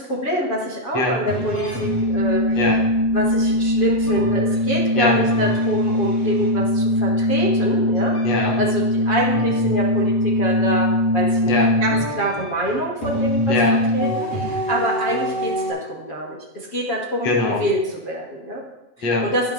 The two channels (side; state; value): right; late; 7.3 ms